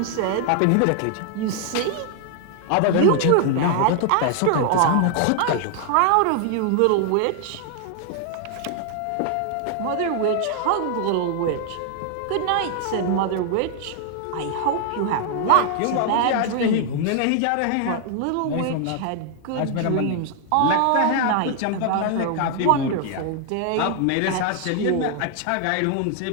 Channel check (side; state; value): both; different; correlation 0.00